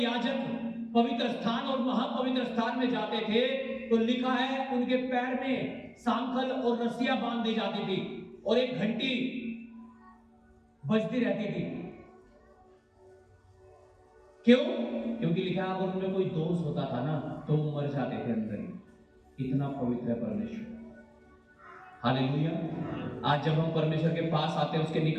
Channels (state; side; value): identical; both; correlation 1.00